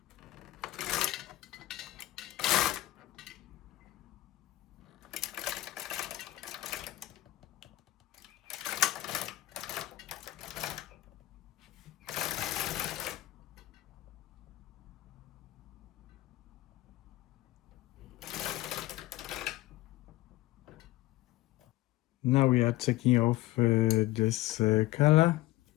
Now we are taking off this color.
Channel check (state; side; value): quieter; right; 17.0 dB